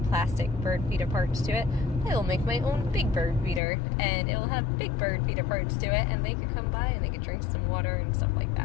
plastic bird feeder parts to it. I will make my own big bird feeder, and it will have big bird feeder parts to it, and they could come by and they could drink some water and stuff like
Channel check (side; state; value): right; drops out; at 3.6 s